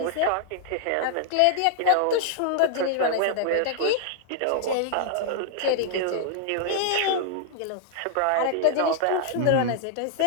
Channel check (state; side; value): different; both; correlation 0.00